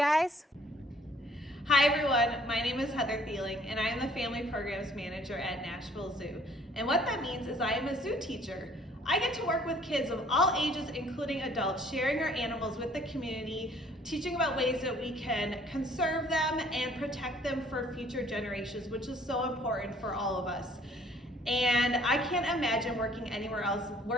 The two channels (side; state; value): both; normal; correlation 0.58